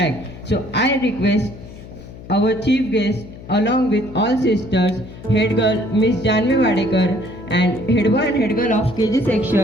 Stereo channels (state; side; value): noise; left; hum, 16 dB below the sound